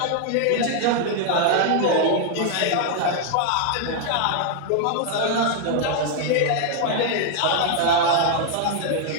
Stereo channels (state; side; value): different; both; correlation 0.00